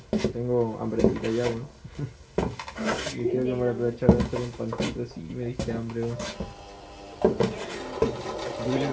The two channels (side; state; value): both; identical; correlation 1.00